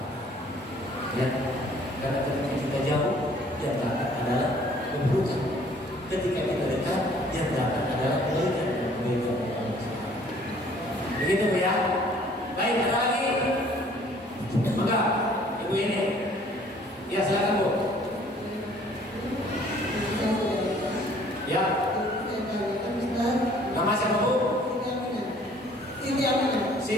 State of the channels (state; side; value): normal; both; correlation 0.56